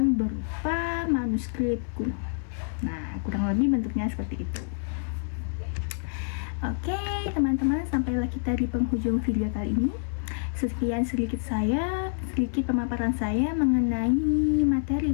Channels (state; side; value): silent; right; 57 dB below the other